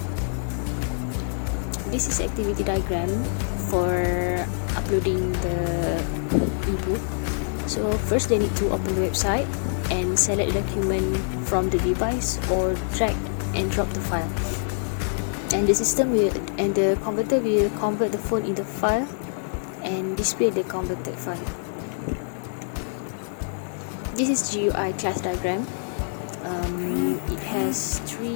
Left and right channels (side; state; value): right; silent; digital silence